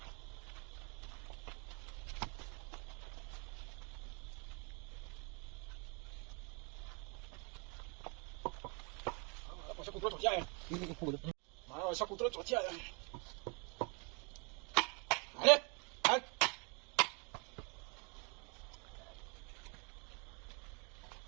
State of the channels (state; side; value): quieter; left; 34.1 dB